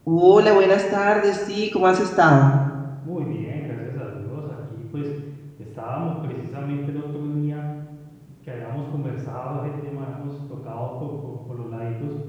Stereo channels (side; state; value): both; identical; correlation 1.00